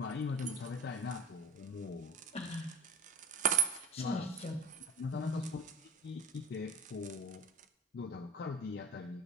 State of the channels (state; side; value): normal; both; correlation 0.33